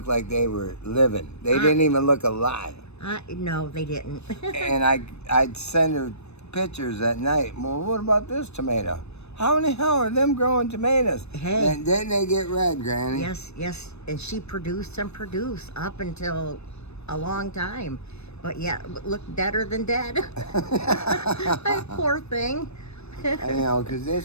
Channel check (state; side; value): late; right; 0.80 ms